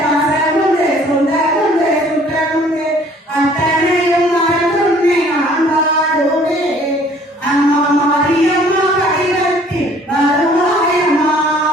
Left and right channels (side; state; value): both; normal; correlation 0.56